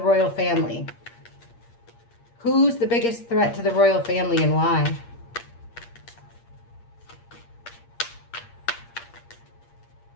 family? Who's the biggest threat to the royal family and why?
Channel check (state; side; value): late; right; 8.6 ms